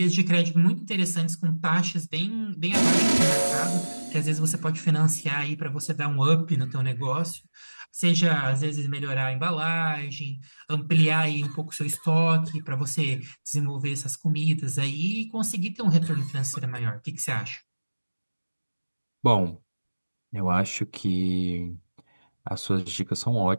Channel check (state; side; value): inverted; both; correlation -1.00